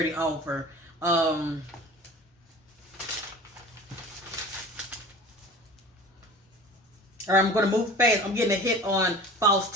offer. All right, I'm going to move fast. I'm getting a hit on false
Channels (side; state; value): both; normal; correlation 0.40